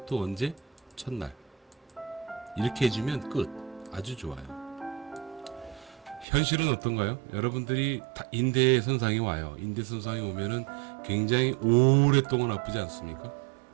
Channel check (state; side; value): drops out; left; at 6.2 s